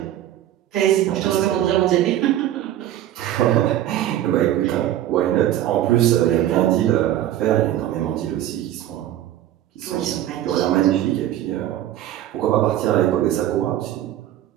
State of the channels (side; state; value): left; quieter; 12.5 dB